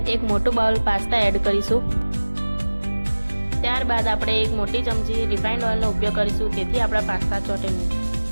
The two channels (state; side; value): inverted; both; correlation -1.00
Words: એક મોટું બાઉલ પાસ્તા એડ કરીશું। ત્યારબાદ આપણે એક મોટી ચમચી રિફાઇન્ડ ઓઇલનો ઉપયોગ કરીશું, તેથી આપણા પાસ્તા ચોટે નહીં।